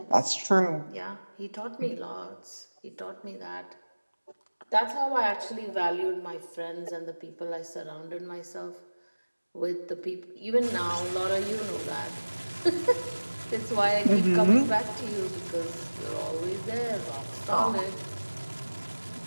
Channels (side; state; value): both; inverted; correlation -1.00